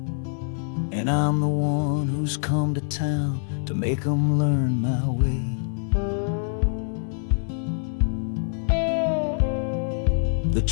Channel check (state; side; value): silent; right; 62 dB below the other